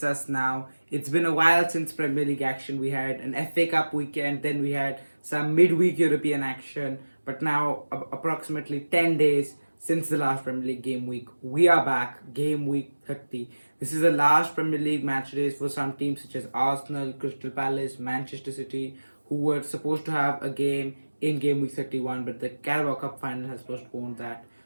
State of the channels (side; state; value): both; inverted; correlation -1.00